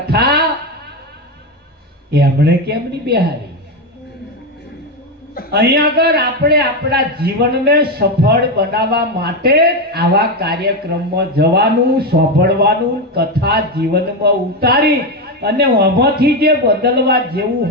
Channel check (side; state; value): both; normal; correlation 0.11